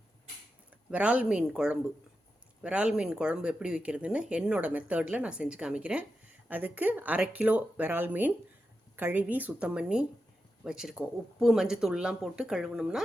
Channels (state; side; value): normal; both; correlation 0.89